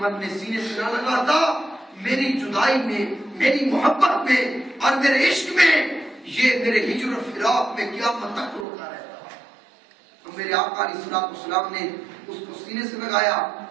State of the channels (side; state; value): left; drops out; at 8.7 s